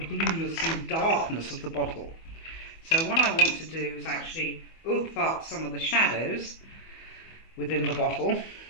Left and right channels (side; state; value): right; late; 25 ms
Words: blueness and darkness of the bottle. So what I want to do is actually oomph up some of the shadows within the bottle.